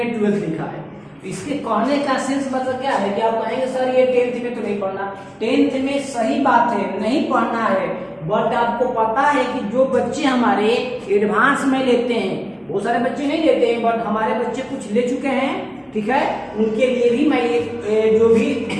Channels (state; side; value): identical; both; correlation 1.00